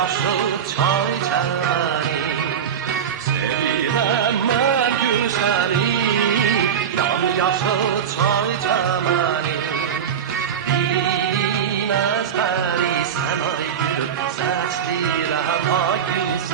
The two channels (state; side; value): quieter; left; 8.2 dB